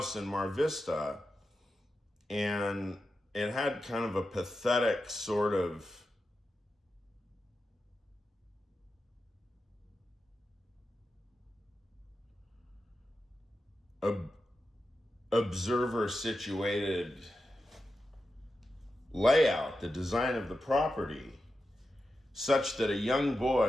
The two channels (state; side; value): normal; both; correlation 0.90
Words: in Mar Vista, and it had kind of a pathetic sort of observer situated layout, the design of the property, such that a young